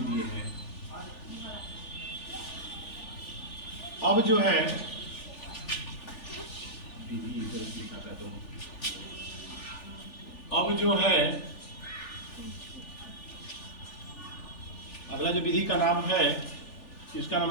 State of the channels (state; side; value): late; right; 3.4 ms